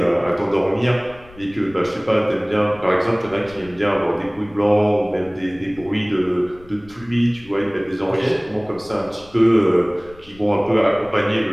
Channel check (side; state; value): left; noise; rumble, 23 dB below the sound